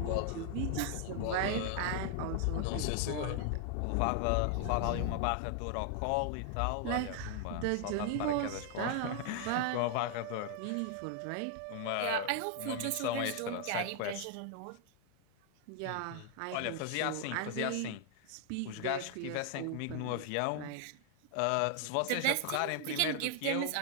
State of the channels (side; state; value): both; different; correlation 0.00